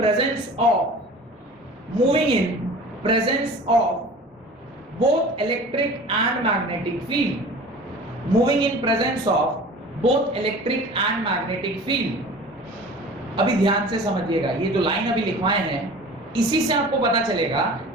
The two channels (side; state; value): both; normal; correlation 0.41